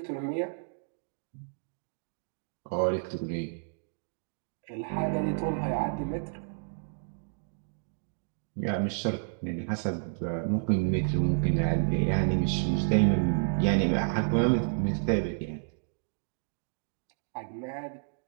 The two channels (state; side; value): silent; left; digital silence